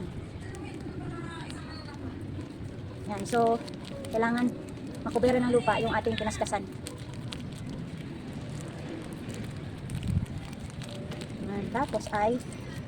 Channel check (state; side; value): identical; both; correlation 1.00